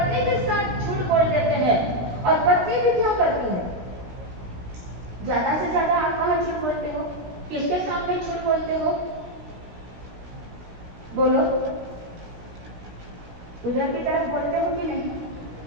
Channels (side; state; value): left; late; 17 ms